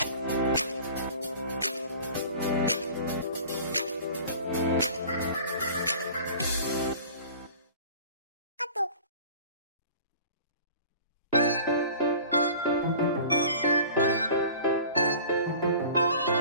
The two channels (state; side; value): inverted; both; correlation -0.43